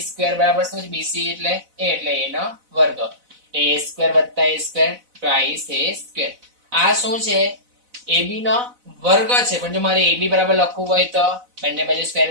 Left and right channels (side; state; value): left; late; 4.0 ms